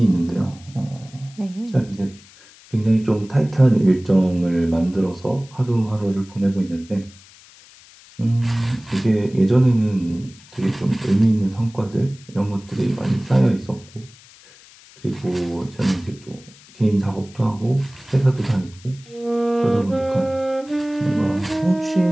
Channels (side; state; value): left; noise; hiss, 24 dB below the sound